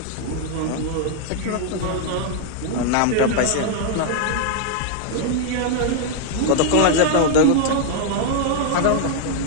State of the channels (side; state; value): both; different; correlation 0.00